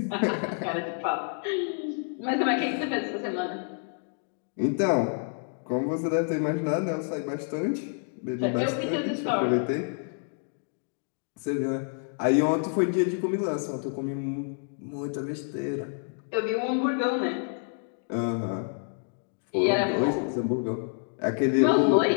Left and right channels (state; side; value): silent; right; 59 dB below the other